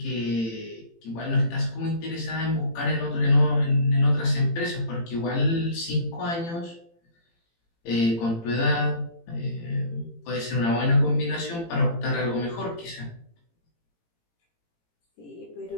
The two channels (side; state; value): right; late; 18 ms